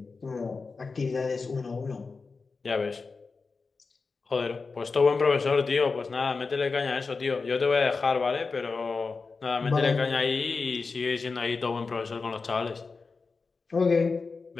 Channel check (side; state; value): right; quieter; 4.4 dB